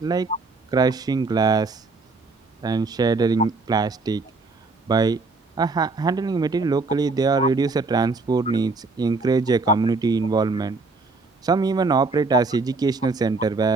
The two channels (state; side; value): quieter; left; 3.8 dB